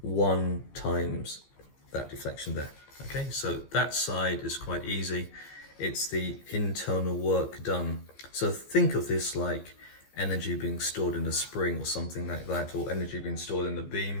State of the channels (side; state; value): right; late; 15 ms